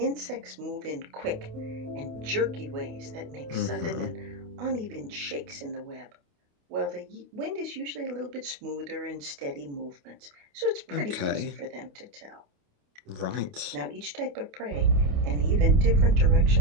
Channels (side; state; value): left; late; 28 ms